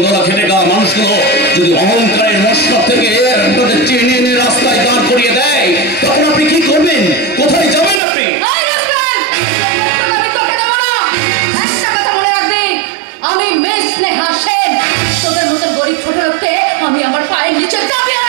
খেটে গা মানুষগুলো যদি অহংকারের মশলা থেকে আপনাদের টেনে এনে রাস্তায় দাঁড় করিয়ে দেয়, তখন আপনি কি করবেন? কোথায় যাবেন আপনি? আমি মেয়ে স্নেহা সেন, তোদের মতন গরিব ছোট লোককে আমি আমার পায়ের নিচে চাবি।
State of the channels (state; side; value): drops out; left; at 8.0 s